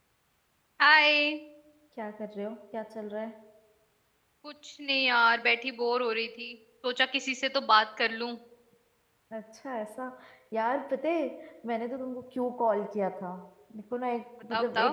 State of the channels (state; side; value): identical; both; correlation 1.00